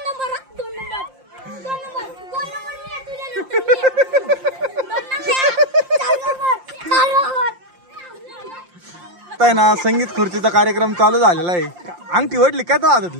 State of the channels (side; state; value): left; late; 5.7 ms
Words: आहे ना संगीत खुर्चीचा कार्यक्रम चालू झालेला आहे. अंगठी वडली काय तो